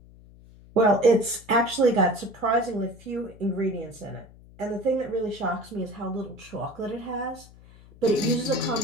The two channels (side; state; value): left; noise; hum, 22 dB below the sound